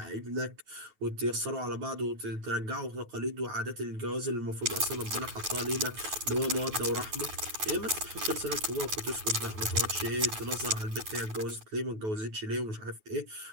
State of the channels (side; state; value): left; late; 9.3 ms